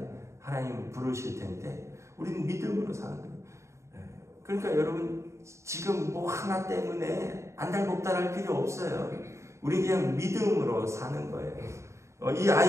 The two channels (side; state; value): left; late; 0.14 ms